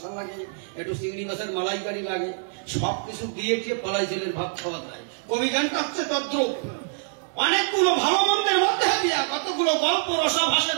লাগে একটু চিংড়ি মাছের মালাইকারি লাগে সবকিছু দিয়ে ফলাই জলের ভাত খাওয়া যায় কবি গানটা হচ্ছে তদ্রুপ অনেকগুলো ভালো মন্দের মধ্যে দিয়া কতগুলো গল্প রসা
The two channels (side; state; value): left; silent; digital silence